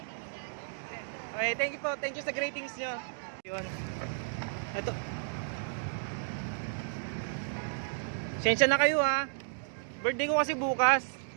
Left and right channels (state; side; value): silent; left; digital silence